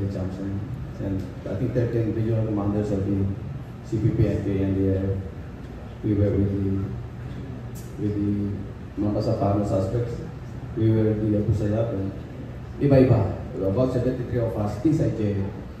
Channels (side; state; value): both; identical; correlation 1.00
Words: Chamson, and I think 13 regional commanders of the CPP and KNDF. We were with the Mampasapano suspects. We were with the Abu Sayyaf and iba-iba. About 73 of us inside jail.